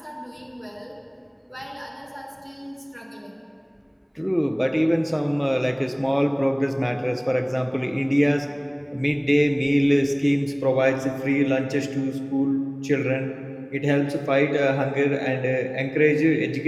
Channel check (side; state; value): both; identical; correlation 1.00